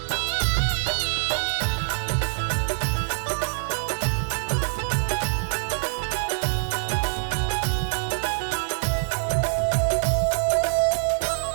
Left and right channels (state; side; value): silent; left; digital silence